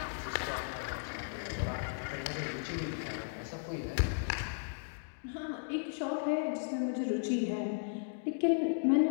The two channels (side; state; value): right; silent; digital silence